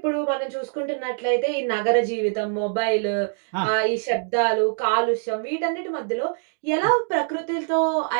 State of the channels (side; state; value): left; silent; digital silence